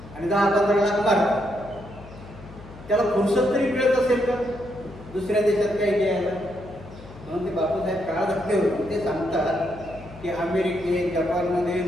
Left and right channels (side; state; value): left; noise; hum, 18 dB below the sound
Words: आणि 10-15 लाख मारतात. त्याला फुरसत तरी मिळत असेल का दुसऱ्या देशात काही घ्यायला? म्हणून ते बापूसाहेब काळ धक्के होते. ते सांगतात की अमेरिकेत जपानमध्ये